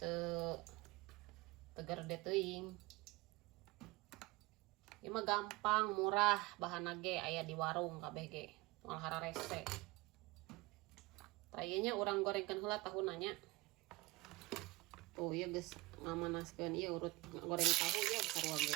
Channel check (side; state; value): left; quieter; 22.5 dB